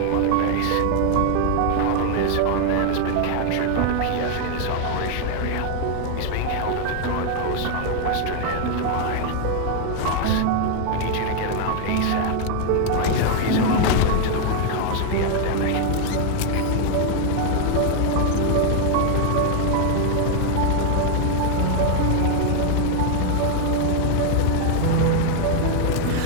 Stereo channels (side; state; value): both; different; correlation 0.00